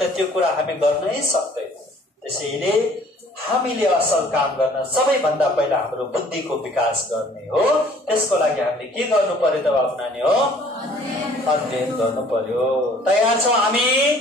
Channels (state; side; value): normal; both; correlation 0.55